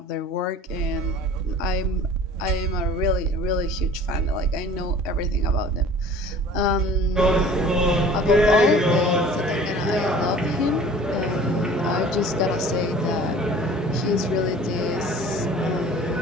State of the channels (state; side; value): normal; both; correlation 0.46